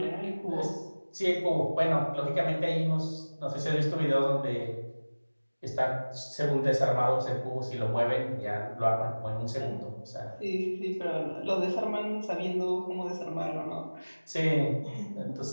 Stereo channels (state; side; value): inverted; both; correlation -1.00